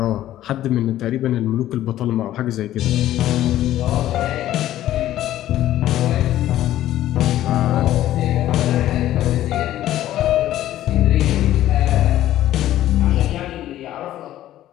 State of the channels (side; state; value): right; quieter; 13.4 dB